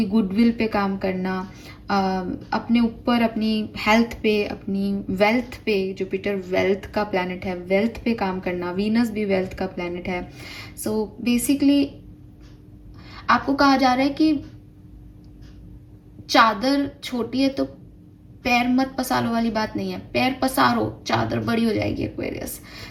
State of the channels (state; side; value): identical; both; correlation 1.00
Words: गुडविल पे काम करना, अपने ऊपर, अपनी हेल्थ पे, अपनी वेल्थ पे, जुपिटर वेल्थ का प्लैनेट है, वेल्थ पे काम करना, वीनस भी वेल्थ का प्लैनेट है। सो बेसिकली आपको कहा जा रहा है कि चादर छोटी है तो पैर मत पसारो वाली बात नहीं है, पैर पसारो, चादर बड़ी हो जाएगी एक्वेरियस।